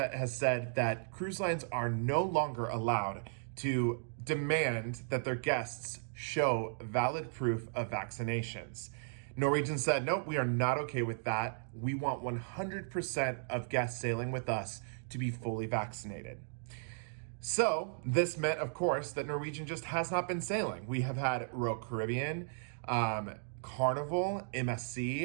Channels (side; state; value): left; silent; digital silence